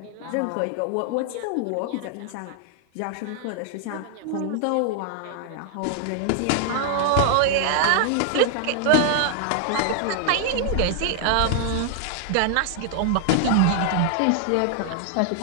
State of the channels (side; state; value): both; different; correlation 0.00